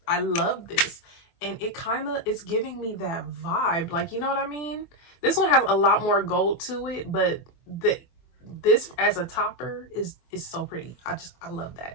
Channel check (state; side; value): late; right; 24 ms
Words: I love this. And it kind of is giving me that vibe. Like, you know what I mean? This one has a lot more gold to it, but this as a topper is so pretty. I love